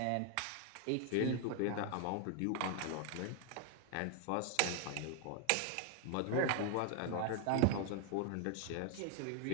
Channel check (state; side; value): different; both; correlation 0.00